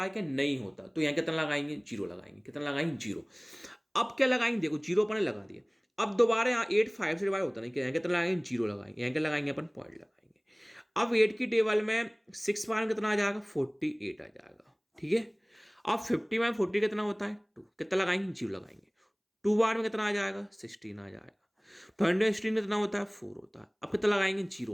है क्या, नहीं होता, तो यहाँ कितना लगाएंगे, 0 लगाएंगे। कितना लगाएंगे, 0। अब क्या लगाएंगे, देखो 0 अपन ने लगा दिया। अब दोबारा यहाँ 8 5 से डिवाइड होता नहीं, यहाँ कितना लगाएंगे, 0 लगाएंगे। यहाँ क्या लगाएंगे अपन, पॉइंट लगाएंगे। अब 8 की टेबल में 6 बार में कितना आ जाएगा, 48 आ जाएगा। ठीक है, अब 50 में 40 कितना होता है, 2, कितना लगाएंगे, 0 लगाएंगे। 2 बार में कितना आ जाएगा, 16 आ जाएगा। 20 कितना होता है, 4 होता है। अब कितना लगाएंगे,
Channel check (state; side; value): identical; both; correlation 1.00